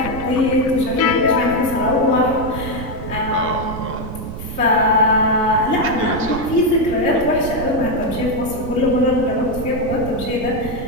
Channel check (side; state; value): right; noise; rumble, 9 dB below the sound